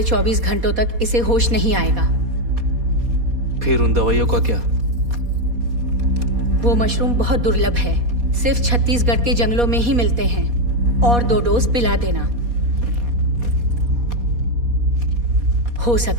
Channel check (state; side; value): late; left; 4.2 ms